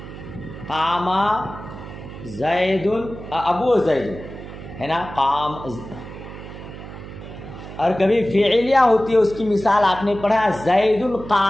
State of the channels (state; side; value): noise; right; hum, 13 dB below the sound